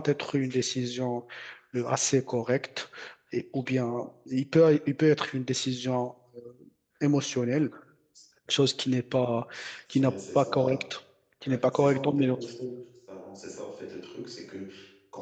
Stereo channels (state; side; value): identical; both; correlation 1.00